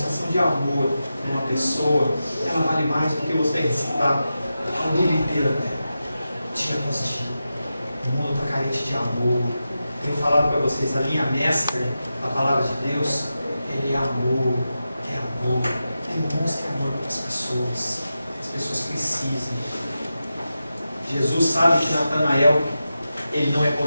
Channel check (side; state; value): both; inverted; correlation -0.91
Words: de amor para uma pessoa, ela vale mais do que você recitar a Bíblia inteira dela, dia após dia. O mundo está carente de amor. Tenho falado para vocês, a linha mestra da palavra de Deus, ele é amor, é amor. Demonstre amor para as pessoas precisam. Jesus sabe que Natanael, ele não é